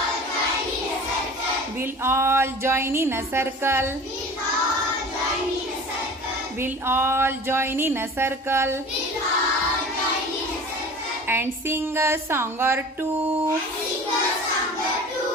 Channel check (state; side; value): normal; both; correlation 0.40